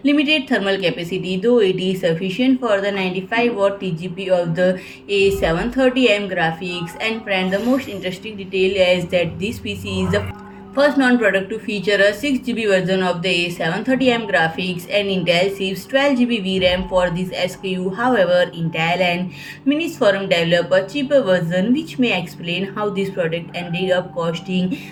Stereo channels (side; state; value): both; identical; correlation 1.00